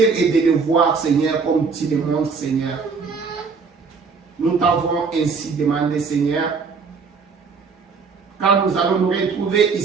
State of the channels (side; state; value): left; quieter; 5.1 dB